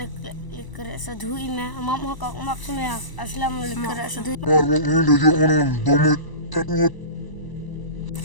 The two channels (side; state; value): right; late; 1.0 ms